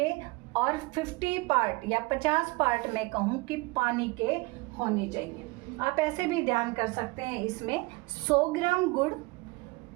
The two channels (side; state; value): left; quieter; 24.7 dB